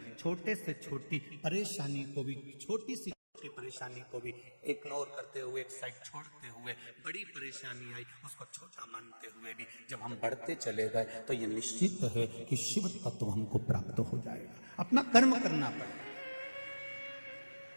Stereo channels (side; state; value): both; inverted; correlation -1.00